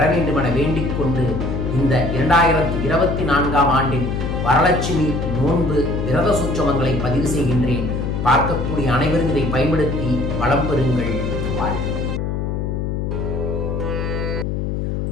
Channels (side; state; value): left; noise; hum, 2 dB below the sound